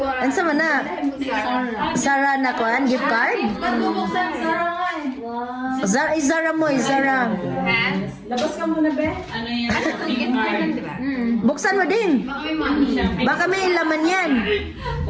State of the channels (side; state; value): both; identical; correlation 1.00